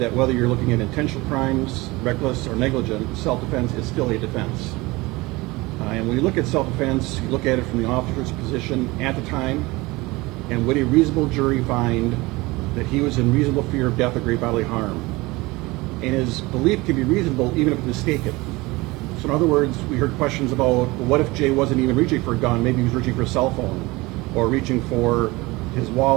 that whether you're looking at intentional crimes, reckless or negligent, self-defense is still a defense. And when you look at self-defense, you look at it from the officer's position at the time, and would a reasonable jury find that he was in reasonable fear of death or great bodily harm? And his belief can be reasonable even if it's mistaken. So in other words, we heard questions about, well, what if Jay wasn't even reaching for a gun? Maybe he was reaching for a cell phone or reaching for his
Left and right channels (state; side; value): quieter; left; 22.1 dB